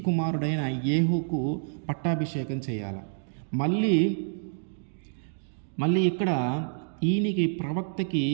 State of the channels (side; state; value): left; silent; digital silence